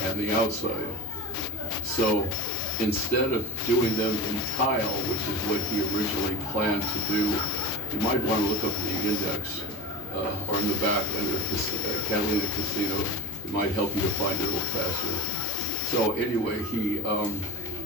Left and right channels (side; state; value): both; normal; correlation 0.28